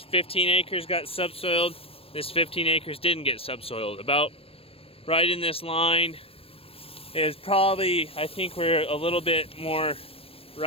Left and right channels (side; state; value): right; late; 0.28 ms